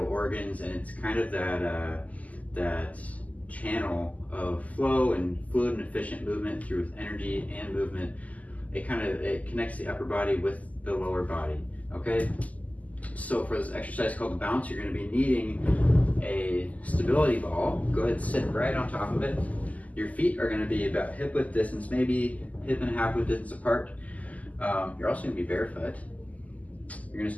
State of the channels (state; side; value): late; right; 0.075 ms